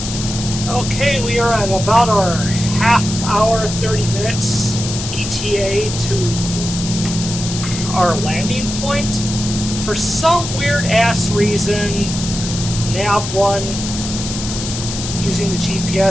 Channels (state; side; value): noise; left; hiss, 7 dB below the sound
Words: Okay, we are at about our half hour, 30 minutes ETA to our landing point. For some weird ass reason, nav 1 using the